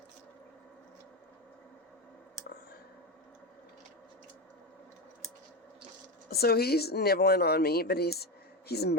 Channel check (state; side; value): normal; both; correlation 0.16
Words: So he's nibbling on me, but he's